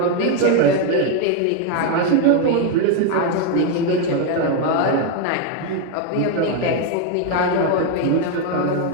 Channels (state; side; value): different; both; correlation 0.01